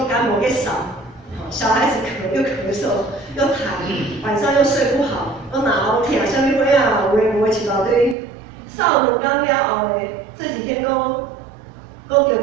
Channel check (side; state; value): left; drops out; at 8.2 s